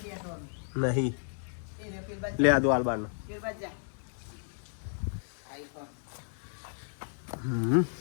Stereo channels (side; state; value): right; silent; digital silence